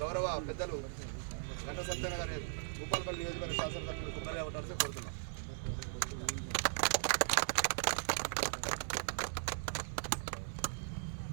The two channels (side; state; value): left; silent; 52 dB below the other